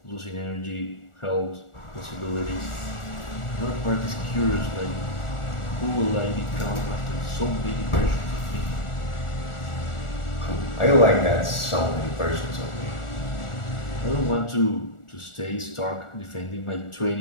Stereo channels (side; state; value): right; late; 1.4 ms